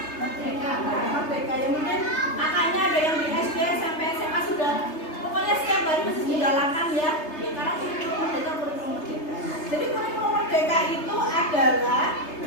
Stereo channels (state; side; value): late; right; 3.3 ms